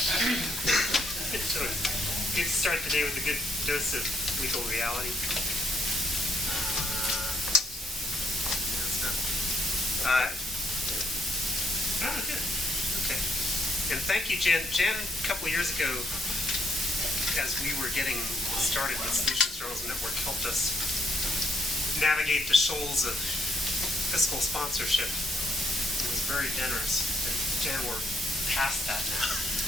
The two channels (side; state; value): both; normal; correlation 0.72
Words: So good to start the day with a good dose of legal reality. Good. Okay. And thank you, Jan. Jan, a couple of years ago, as we were getting started with Solutions Journalism Network, helped us navigate the shoals of fiscal sponsorship. It was very generous. And Jan, we're past that now.